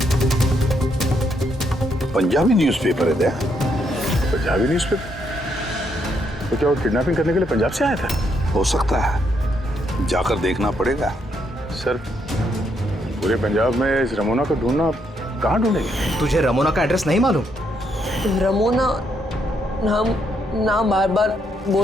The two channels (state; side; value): normal; both; correlation 0.75